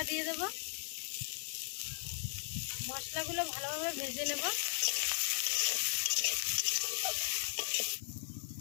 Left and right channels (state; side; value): silent; right; digital silence